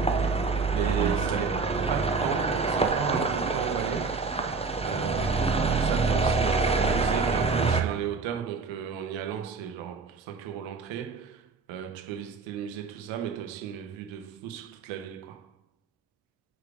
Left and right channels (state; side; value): quieter; left; 4.5 dB